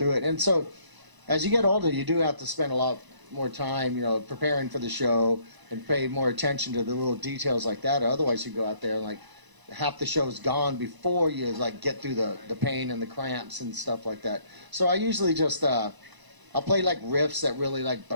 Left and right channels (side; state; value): left; late; 1.0 ms